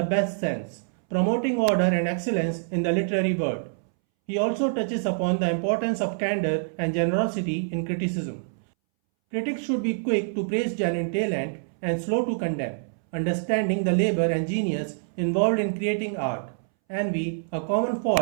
best sense, promoting order and excellence in the literary world. He also touches upon the importance of candor and generosity in criticism. Critics should be quick to praise genuine talent and slow to condemn, understanding the labor and genius involved in creating art. Envy, a common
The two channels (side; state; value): left; silent; 61 dB below the other